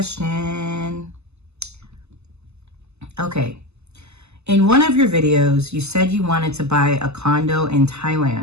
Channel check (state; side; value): late; left; 0.80 ms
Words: Okay. In one of your videos, you said you wanted to buy a condo in